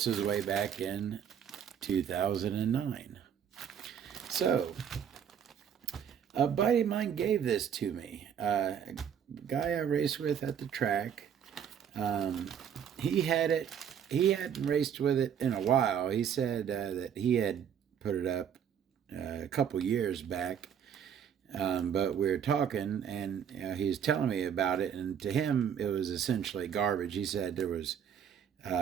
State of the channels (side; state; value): left; quieter; 8.4 dB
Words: was way back in 2009. So, a buddy of mine gave this to me. A guy I raced with at the track. He had it. He hadn't raced with it in a while. He said that he had put it up a couple years back. But we were talking, and he was telling me about it. And to him, it was essentially garbage. He said there was